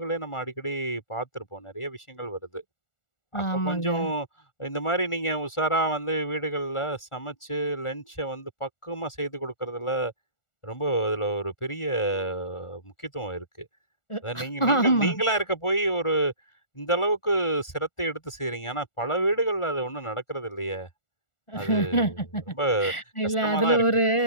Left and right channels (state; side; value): late; right; 1.4 ms